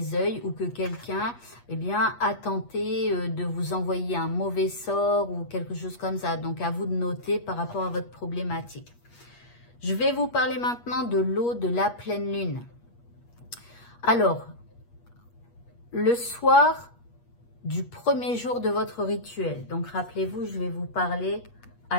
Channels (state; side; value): late; right; 8.4 ms